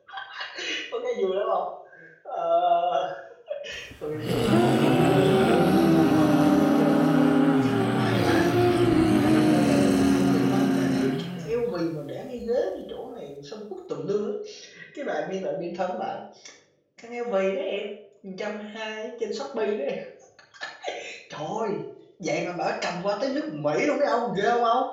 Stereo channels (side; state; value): both; identical; correlation 1.00